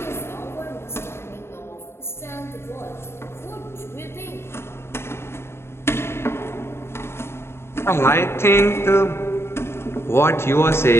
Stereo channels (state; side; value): late; right; 0.12 ms